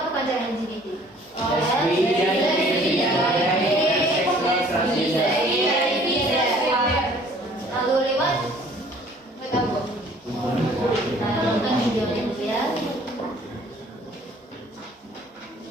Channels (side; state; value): both; normal; correlation 0.55